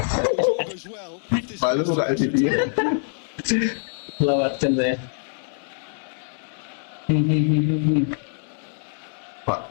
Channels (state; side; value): silent; right; digital silence